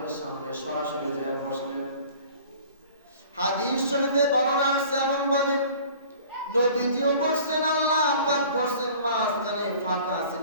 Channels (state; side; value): inverted; both; correlation -0.47